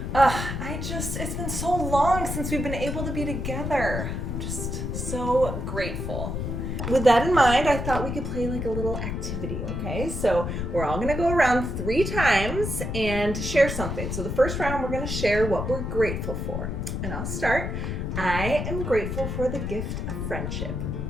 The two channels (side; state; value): left; noise; rumble, 3 dB below the sound